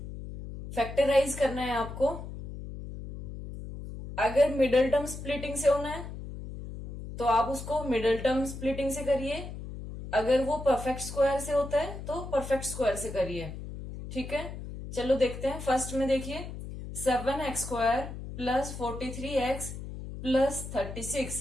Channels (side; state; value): left; noise; hum, 9 dB below the sound